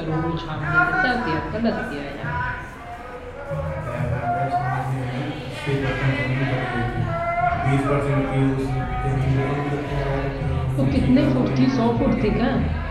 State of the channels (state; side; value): identical; both; correlation 1.00